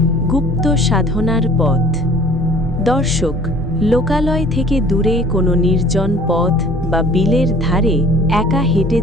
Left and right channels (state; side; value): normal; both; correlation 0.50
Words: গুপ্ত সাধনার পথ। দর্শক, লোকালয় থেকে দূরে কোনো নির্জন পথ বা বিলের ধারে একা হেঁটে